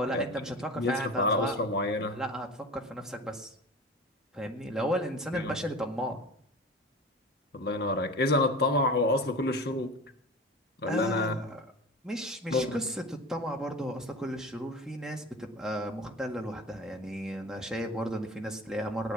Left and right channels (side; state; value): both; normal; correlation 0.34